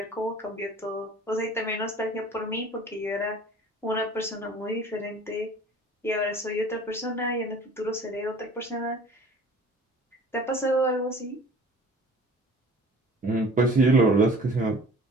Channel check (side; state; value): both; normal; correlation 0.46